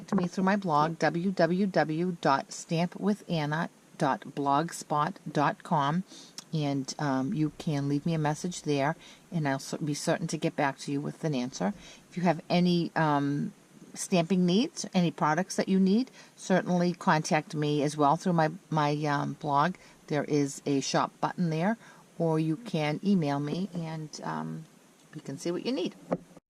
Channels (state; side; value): identical; both; correlation 1.00